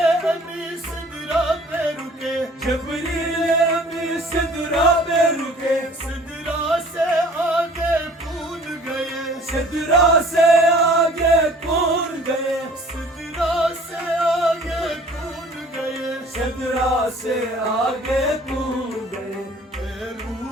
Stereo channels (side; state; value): both; normal; correlation 0.51